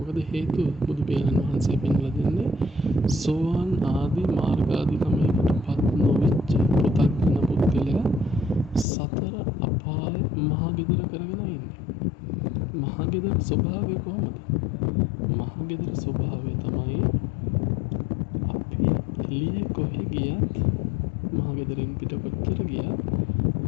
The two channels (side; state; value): right; drops out; at 8.8 s